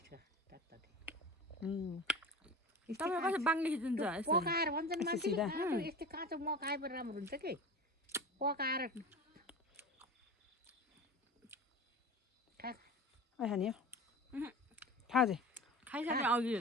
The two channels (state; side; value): normal; both; correlation 0.33